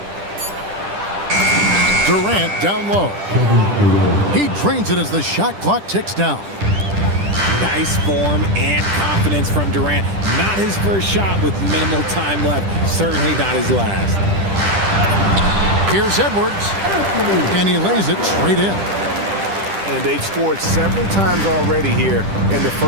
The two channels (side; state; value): left; late; 10 ms